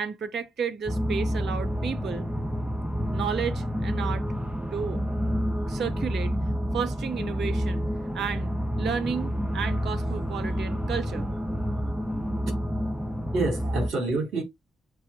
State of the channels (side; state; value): both; normal; correlation 0.86